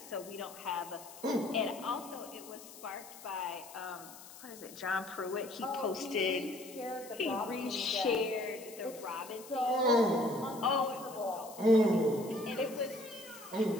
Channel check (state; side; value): noise; left; hiss, 17 dB below the sound